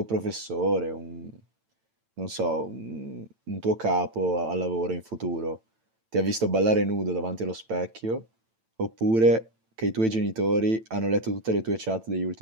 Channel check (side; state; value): left; late; 8.9 ms